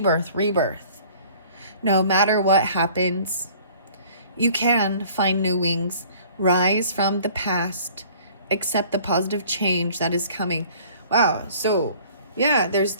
No matter what happens, you can find new wings, rise from the past, accept the positive change that is coming. Wow. So yeah, there's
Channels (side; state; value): both; inverted; correlation -0.52